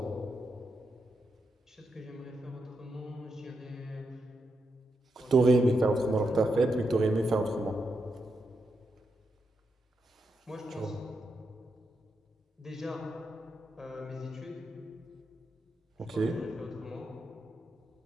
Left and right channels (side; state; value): both; normal; correlation 0.84